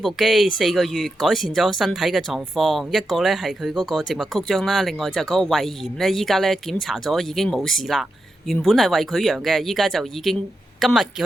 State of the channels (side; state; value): both; normal; correlation 0.87